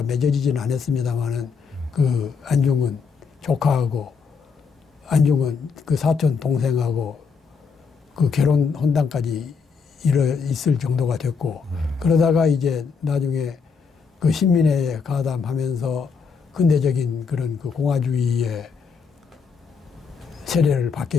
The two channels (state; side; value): quieter; right; 5.5 dB